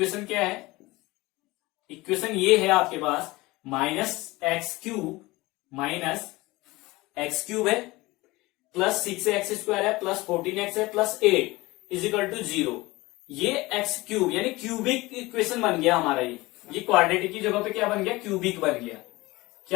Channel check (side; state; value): right; quieter; 21.0 dB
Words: क्या है, इक्वेशन ये है आपके पास, माइनस एक्स क्यूब है, प्लस 6x स्क्वायर है, प्लस 14x है, प्लस 8 इज इक्वल टू 0। ये एक्स क्यूब यानी क्यूबिक इक्वेशन बन गया हमारा, ये क्वाड्रेटिक की जगह पे क्या बन गया, क्यूबिक बन गया।